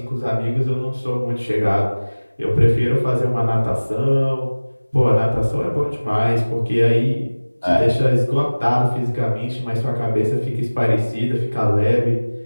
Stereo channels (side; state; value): both; inverted; correlation -1.00